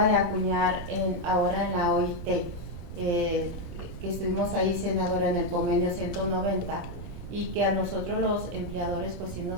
de acuñar ahora en la OIT, que estuvimos ahí, senadora, en el convenio 190, y que a nosotros los empleadores pues sí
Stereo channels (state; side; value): noise; right; rumble, 10 dB below the sound